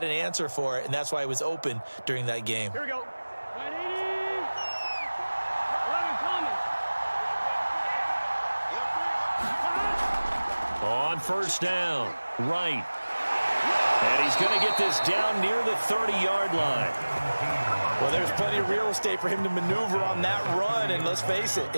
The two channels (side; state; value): both; inverted; correlation -1.00